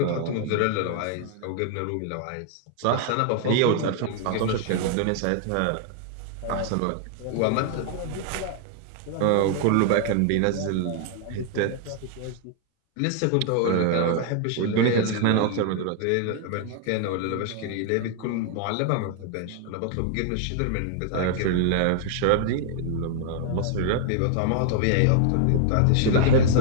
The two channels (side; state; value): both; different; correlation 0.00